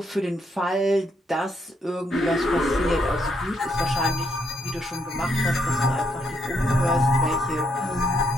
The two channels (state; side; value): normal; both; correlation 0.75